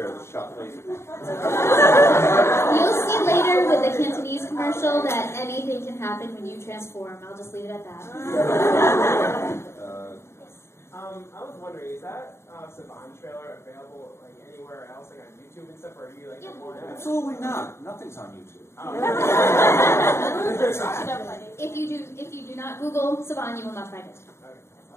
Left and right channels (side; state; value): right; late; 0.13 ms